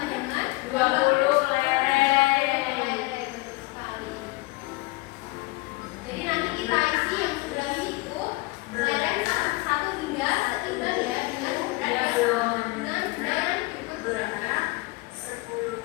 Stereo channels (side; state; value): right; quieter; 22.9 dB